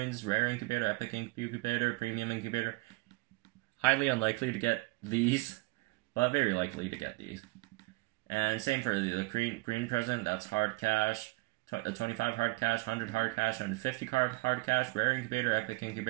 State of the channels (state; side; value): quieter; left; 24.3 dB